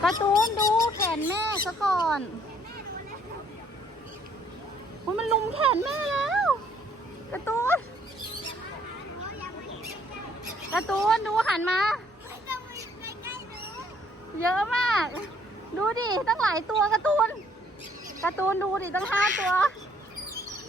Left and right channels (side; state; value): both; normal; correlation 0.64